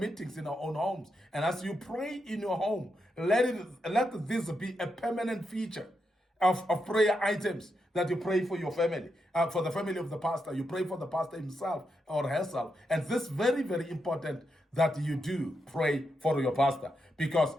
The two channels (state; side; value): normal; both; correlation 0.84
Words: in our own homes. And as you pray in your home, let this be a permanent feature of prayer items that you pray for your family, for the family of the pastor. You pray for the pastor himself or herself. And this is very, very important that you do pray for your pastor because